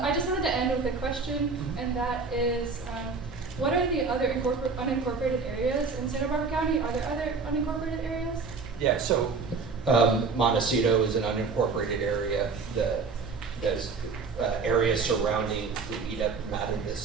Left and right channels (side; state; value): left; quieter; 4.7 dB